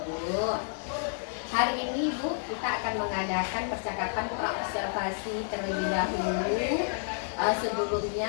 Hari ini Bu, kita akan mengadakan percakapan praobservasi terlebih dahulu. Sebelumnya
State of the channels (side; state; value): right; silent; 58 dB below the other